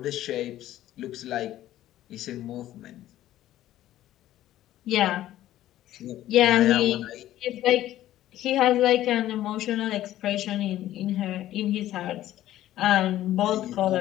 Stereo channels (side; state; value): right; quieter; 13.6 dB